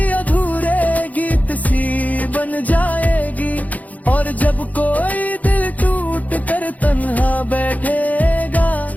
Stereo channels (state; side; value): late; right; 0.076 ms